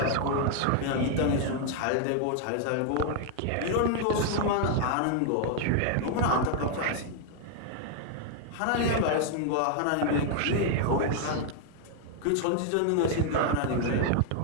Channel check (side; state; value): both; different; correlation 0.00